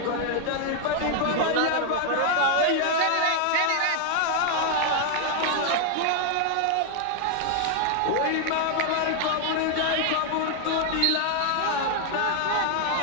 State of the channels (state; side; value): different; both; correlation 0.00